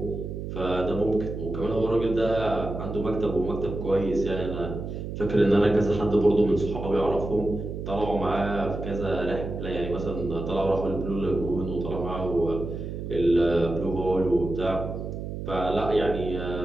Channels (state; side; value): noise; right; hum, 6 dB below the sound